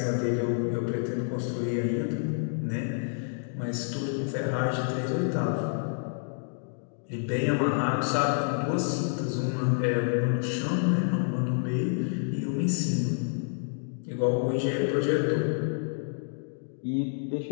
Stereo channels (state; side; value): silent; right; digital silence